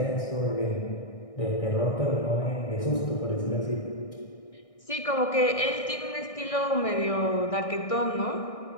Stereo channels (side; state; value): right; late; 1.6 ms